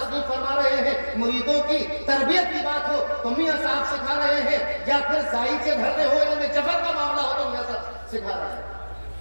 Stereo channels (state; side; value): inverted; both; correlation -1.00